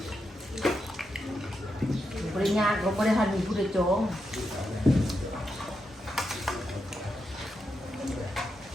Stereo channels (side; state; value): both; normal; correlation 0.85